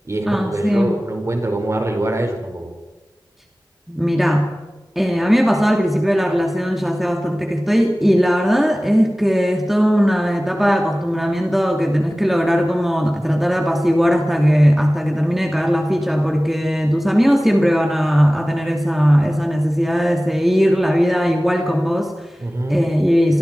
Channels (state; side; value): normal; both; correlation 0.97